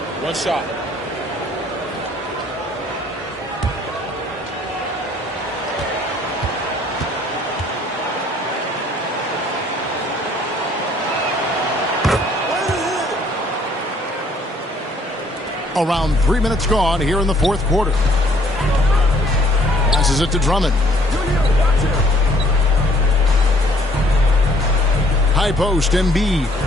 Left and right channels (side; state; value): both; normal; correlation 0.61